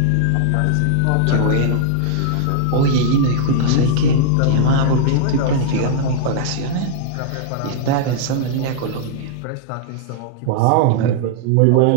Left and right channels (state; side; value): different; both; correlation -0.01